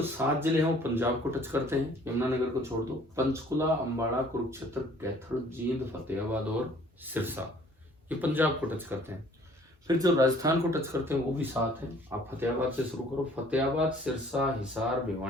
7 जिले हैं वो पंजाब को टच करते हैं, यमुनानगर को छोड़ दो। पंचकुला, अंबाला, कुरुक्षेत्र, कैथल, जींद, फतेहाबाद और सिरसा, ये पंजाब को टच करते हैं। फिर जो राजस्थान को टच करते हैं वो भी 7 हैं। आप फतेहाबाद से शुरू करो, फतेहाबाद, सिरसा, हिसार,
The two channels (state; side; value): normal; both; correlation 0.55